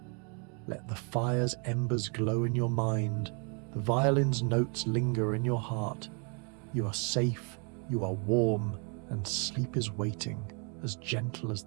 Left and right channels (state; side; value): quieter; left; 36.9 dB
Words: Let the fire's embers glow in your mind, the violin's notes linger in your heart. You are safe, you are warm, and sleep is waiting, as gentle as